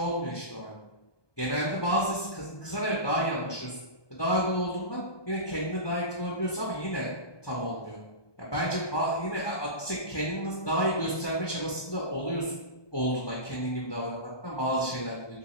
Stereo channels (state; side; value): late; right; 1.2 ms